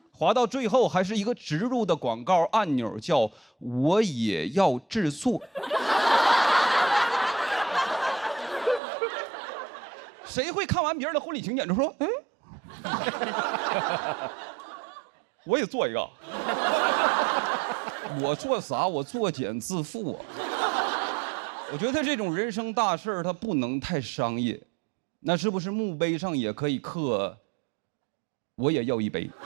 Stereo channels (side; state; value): left; drops out; at 8.8 s